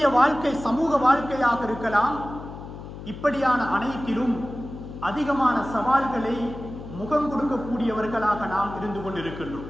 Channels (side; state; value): left; noise; hum, 12 dB below the sound